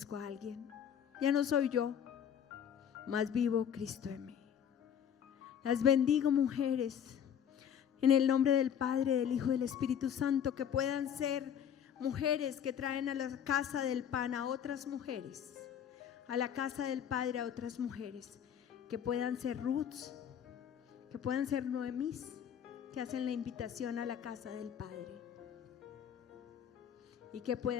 a alguien. Ya no soy yo, mas vivo Cristo en mí. Las bendigo, mujeres, en el nombre del Padre, del Hijo y del Espíritu Santo, que puedan ser mujeres que traen a la casa del pan a otras mujeres, a la casa del Padre a otras mujeres, que puedan ser Ruths, que puedan ser Noemís, que hacen la invitación a la casa del Padre, y que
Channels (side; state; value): right; quieter; 8.8 dB